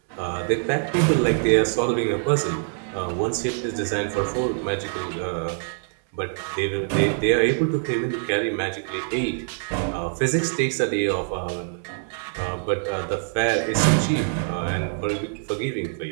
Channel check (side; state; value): left; silent; 62 dB below the other